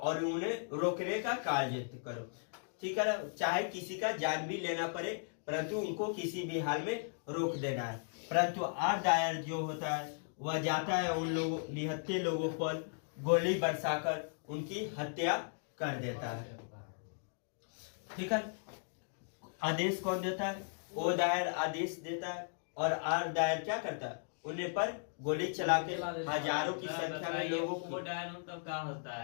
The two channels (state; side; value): silent; right; digital silence